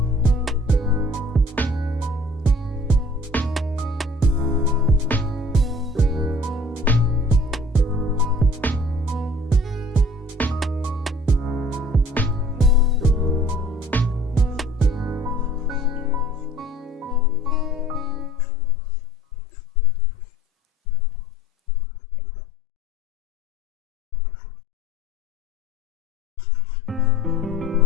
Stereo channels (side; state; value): both; normal; correlation 0.52